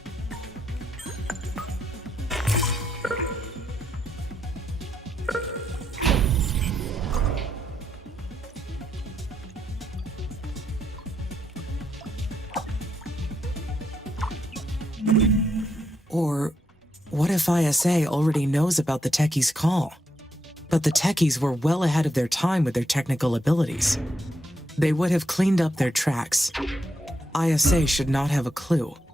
Or what if ISA already knows about the techie's call, But the techies were well ahead of their time with their technical abilities. They would have cleaned up their tracks. ISA should not have a clue.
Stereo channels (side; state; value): both; normal; correlation 0.79